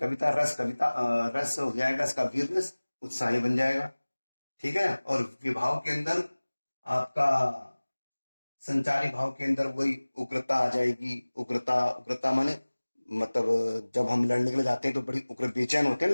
रस हो जाएगा इसका वीर रस, उत्साही बन जाएगा। ठीक है, और विभाव के अंदर आपका संचारी भाव के अंदर वही उग्रता आ जाएगी। उग्रता माने मतलब जब हम लड़ने के लिए जाते हैं तो बड़ी उग्र बेचैन होते हैं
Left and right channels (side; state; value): both; inverted; correlation -1.00